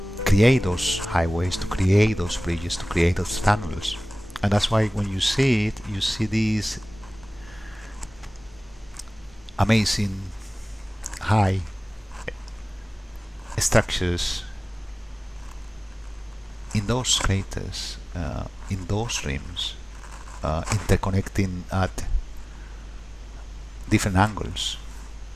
create those highways, to create those bridges, to create those tunnels. And that's why when you see it, you see these amazing high structures in those craters, in those rims, interconnecting at different angles,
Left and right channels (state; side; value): normal; both; correlation 0.98